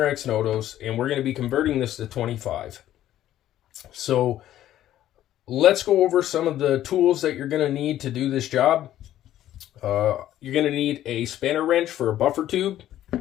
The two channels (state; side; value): quieter; right; 12.6 dB